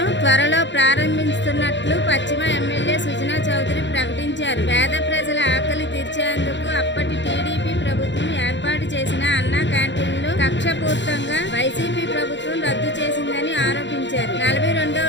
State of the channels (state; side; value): late; right; 0.53 ms